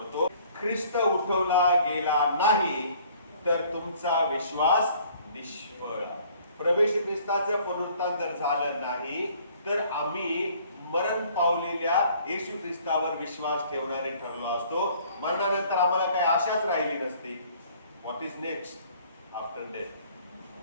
ख्रिस्त उठवला गेला नाही तर तुमचा विश्वास निष्फळ. प्रभू येशू ख्रिस्ताचं पुनरुत्थान जर झालं नाही तर आम्ही मरण पावलेल्या येशू ख्रिस्तावर विश्वास ठेवणारे ठरलो असतो. मरणानंतर आम्हाला काही आशाच राहिली नसती. What is next after death?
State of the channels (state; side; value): inverted; both; correlation -0.56